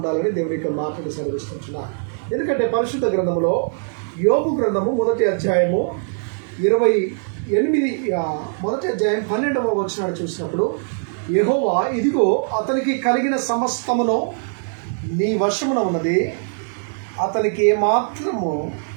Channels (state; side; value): silent; left; digital silence